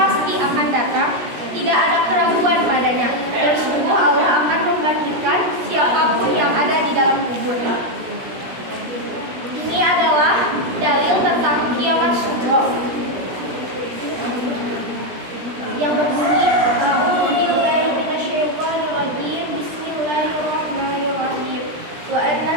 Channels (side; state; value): left; late; 17 ms